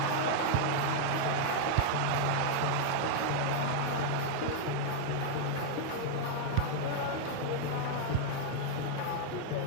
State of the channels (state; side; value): different; both; correlation 0.00